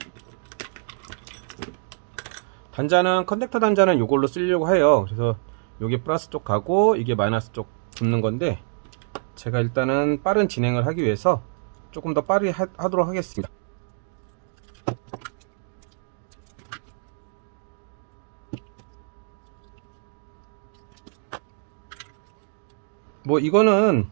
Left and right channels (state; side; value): silent; left; 56 dB below the other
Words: 단자는 컨택터 단자는 이걸로 쓰려고 해요. 그래서 이게 플러스 쪽 가고 이게 마이너스 쪽 붙는 건데 제가 일단은 빠른 진행을 하기 위해서 조금 더 빠르게 하도록 하겠습니다. 뭐 이거는